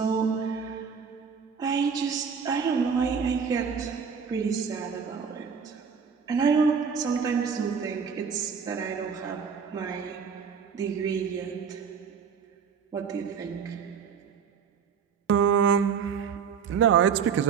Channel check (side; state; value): left; quieter; 6.5 dB